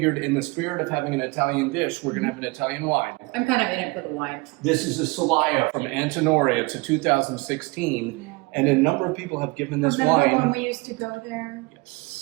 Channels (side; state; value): left; quieter; 25.7 dB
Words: in the spirit of having an Italian dish, we're going to have an Italian wine. I'm kind of in it for the wine. This is a Solaya from Antinori. It's a 2016. And a number of people have given this wine. Remember when we used to go there?